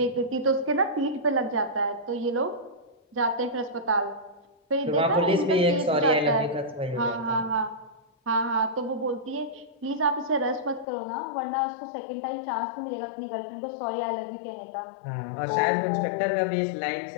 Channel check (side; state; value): right; drops out; at 10.9 s